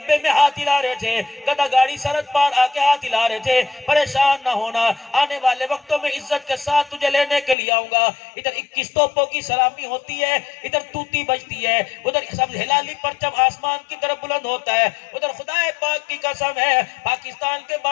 میں ہاتھ ہلا رہے تھے، گدھا گاڑی سرحد پار آ کے ہاتھ ہلا رہے تھے، پریشان نہ ہونا، آنے والے وقتوں میں عزت کے ساتھ تجھے لینے کے لیے آؤں گا۔ ادھر 21 توپوں کی سلامی ہوتی ہے، ادھر توتی بجتی ہے، ادھر سب ہلالی پرچم آسمان کی طرف بلند ہوتا ہے، ادھر خدائے پاک کی قسم ہے پاکستان کے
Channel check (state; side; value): drops out; right; at 7.6 s